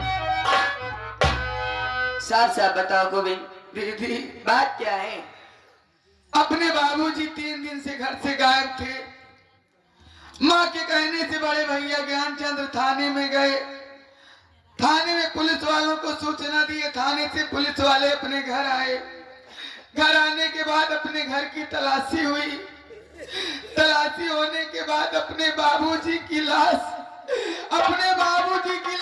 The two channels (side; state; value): both; identical; correlation 1.00